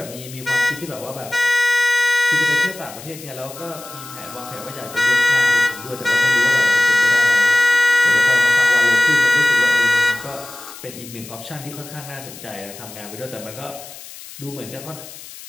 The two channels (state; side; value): noise; left; hiss, 16 dB below the sound